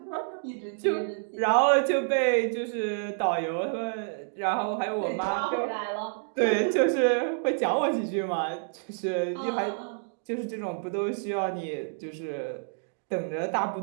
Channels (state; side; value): silent; left; digital silence